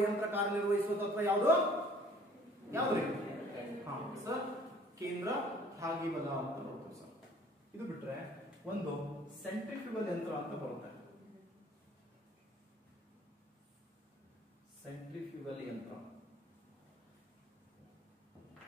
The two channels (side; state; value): both; normal; correlation 0.55